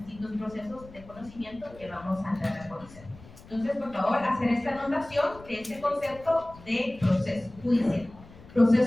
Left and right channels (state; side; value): noise; left; rumble, 20 dB below the sound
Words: procesos de conocimiento que vamos a entrar a conocer. Entonces, por favor, hacer esta anotación de este concepto de proceso judicial.